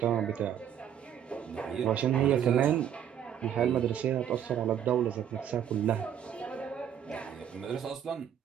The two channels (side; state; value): left; quieter; 9.3 dB